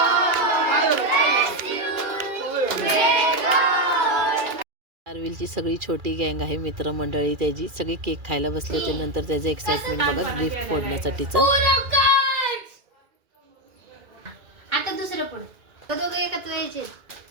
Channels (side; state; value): left; late; 2.4 ms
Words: आरविलची सगळी छोटी गँग आहे, मित्रमंडळी त्याची सगळी केक खायला बसले होते. नंतर त्याचं एक्साइटमेंट बघा गिफ्ट फोडण्यासाठीचं. आता दुसरं फोड. दोघे एकत्र यायचे.